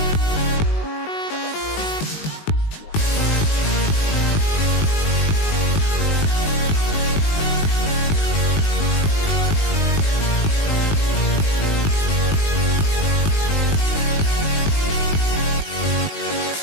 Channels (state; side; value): late; right; 19 ms